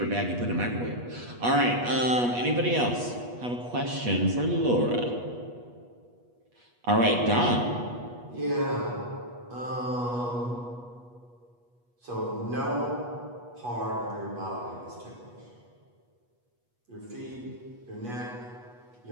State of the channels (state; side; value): late; left; 8.3 ms